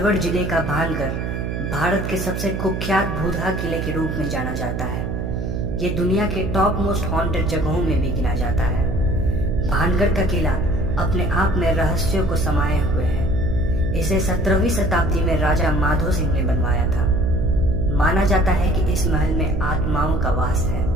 जिले का भानगढ़ भारत के सबसे कुख्यात भूतहा किले के रूप में जाना जाता है। ये दुनिया के टॉप मोस्ट हॉन्टेड जगहों में भी गिना जाता है। भानगढ़ का किला अपने आप में रहस्यों को समाये हुए है। इसे 17वीं शताब्दी में राजा माधो सिंह ने बनवाया था। माना जाता है कि इस महल में आत्माओं का वास है।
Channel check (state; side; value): noise; right; hum, 3 dB below the sound